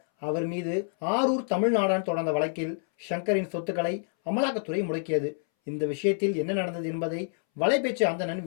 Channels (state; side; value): silent; right; 60 dB below the other